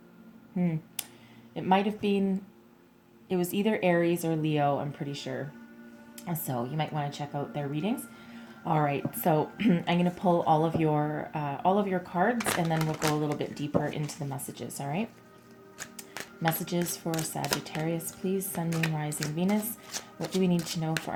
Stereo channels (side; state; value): both; identical; correlation 1.00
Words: it might have been, it was either Aries or Leo, I'm pretty sure. So you might want to check out their readings. All right, so I'm going to pull all of your cards, and then we'll go a little bit deeper into the messages, all right? Messages for Sagittarius, please. Sun, Moon, Rising, Venus. What do we need to know for